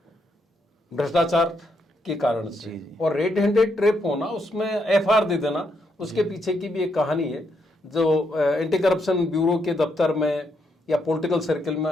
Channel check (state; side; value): normal; both; correlation 0.78